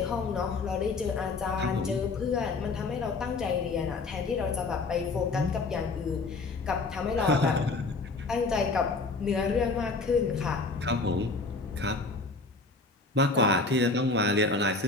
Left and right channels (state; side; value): quieter; right; 3.7 dB